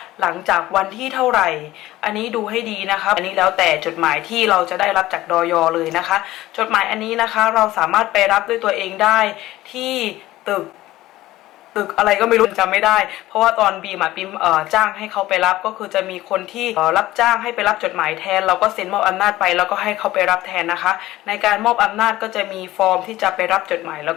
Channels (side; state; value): right; quieter; 16.3 dB